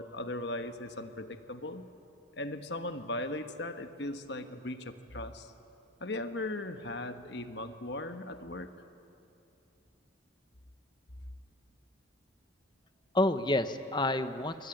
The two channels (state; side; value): normal; both; correlation 0.36